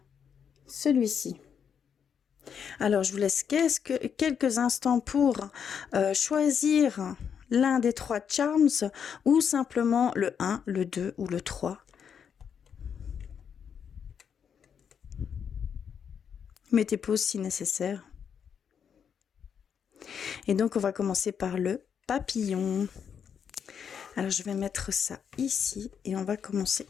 celui-ci. Alors, je vous laisse quelques instants pour choisir l'un des 3 charms ou simplement le 1, le 2 ou le 3. Mettez pause si nécessaire. Et donc, on va commencer par le papillon. Alors, je vais mettre ça ici et on va commencer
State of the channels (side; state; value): right; quieter; 7.5 dB